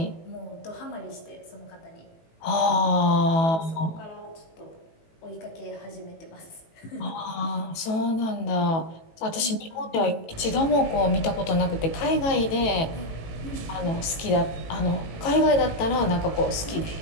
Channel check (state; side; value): late; right; 18 ms